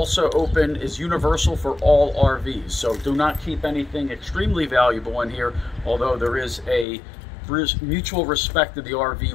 open, is universal for all RVs. So do not keep anything extremely valuable in here, although there is a mutual respect to the RV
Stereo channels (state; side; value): drops out; right; at 6.9 s